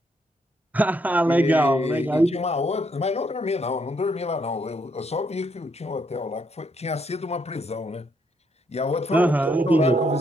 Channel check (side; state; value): both; normal; correlation 0.74